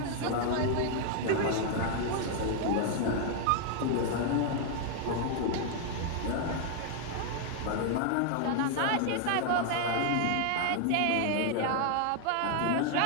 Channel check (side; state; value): both; different; correlation 0.00